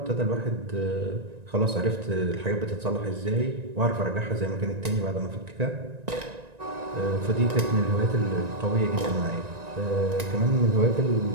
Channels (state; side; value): late; left; 1.9 ms